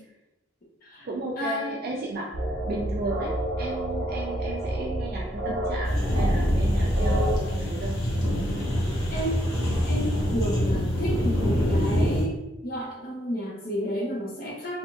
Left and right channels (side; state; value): both; normal; correlation 0.75